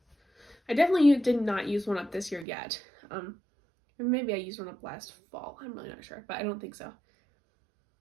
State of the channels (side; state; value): left; drops out; at 2.5 s